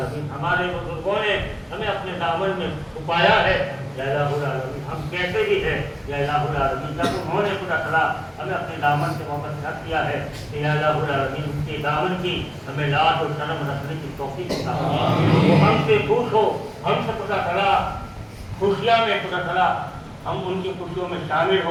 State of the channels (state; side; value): identical; both; correlation 1.00